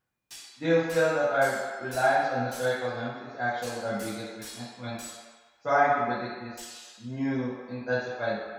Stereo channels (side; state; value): both; identical; correlation 1.00